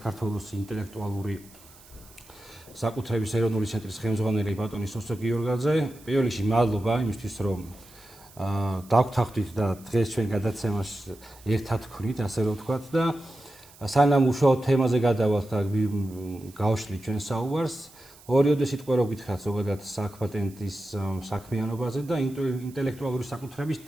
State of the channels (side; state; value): right; noise; hiss, 24 dB below the sound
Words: ინტელექტუალური საკუთრების ეროვნული ცენტრის ხელმძღვანელი ბატონი სოსო გიორგაძე. პირველ რიგში მადლობა იმისთვის, რომ დავგვთანხმდით და დღეს ჩვენ გადაცემას ერთად ვქნით, ასე რომ ვთქვათ და სანამ უშუალოდ თემაზე გადავალთ და გავშლით ჩვენ საუბარს, ორიოდე სიტყვა რო გითხრათ ზოგადად საქპატენტის საქმიანობაზე და ინტელექტუალური საკუთრების